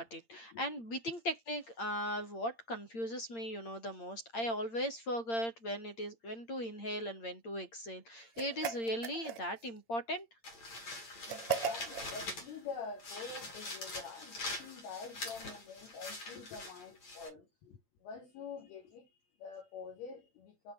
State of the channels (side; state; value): right; late; 8.7 ms